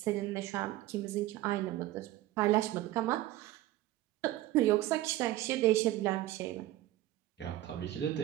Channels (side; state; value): left; quieter; 15.5 dB